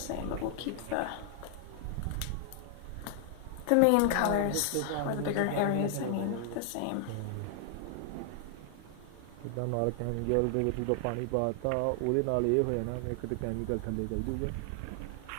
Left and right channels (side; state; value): both; different; correlation 0.00